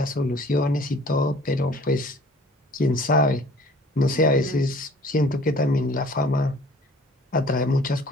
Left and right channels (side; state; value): both; normal; correlation 0.51